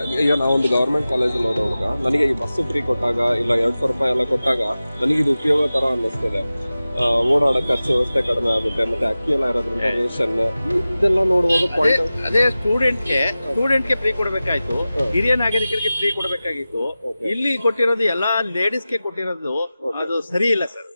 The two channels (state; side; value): inverted; both; correlation -0.96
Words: ಈಗ ನಾವೊಂದು ಗವರ್ಮೆಂಟ್ ಕಾಲೇಜಲ್ಲಿ ಓದೋವಾಗ ನನಗೆ ಈ ಬಸ್ ಫ್ರೀ ಕೊಟ್ಟಾಗ ಇಲ್ಲ 200 ರೂಪಾಯಿ ಎಲ್ಲ ಕೊಟ್ಟಾಗ ನನಗೆ ಇದು ಉಪಯೋಗ ತರ ಅನ್ನಿಸ್ತದೆ. ಓಡಾಡೋ ಖರ್ಚು ವ್ಯವಸ್ಥೆ ಕಡಿಮೆ ಆಗುತ್ತೆ, ಮತ್ತೆ ಅಕ್ಕಿ ಎಲ್ಲ ಇರೋದ್ರಿಂದ ರೇಷನ್ ಇದೆಲ್ಲ ನೋಡುವಾಗ ಅದೇ ಸ್ಟೂಡೆಂಟ್ಗೆ ಫ್ರೀ ಕೊಡಬೇಕಾಯ್ತು, ಹಿರಿಯ ನಾಗರಿಕರಿಗೆ ಫ್ರೀ ಕೊಡಬೇಕಾಗಿತ್ತು. ಇಲ್ಲಿ ಕೊಟ್ಟಿರೋದು ಎಲ್ಲಾ ಲೇಡೀಸ್ಗೆ ಕೊಟ್ಟಿರೋದು ಅದು ಸರಿ ಇಲ್ಲ ಸರ್.